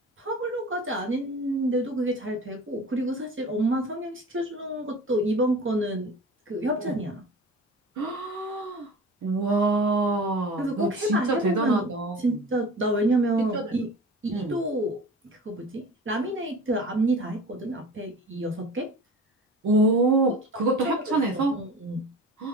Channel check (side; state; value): both; normal; correlation 0.39